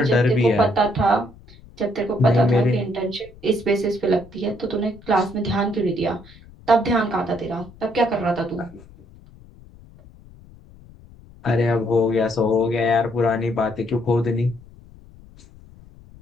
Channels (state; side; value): noise; left; rumble, 23 dB below the sound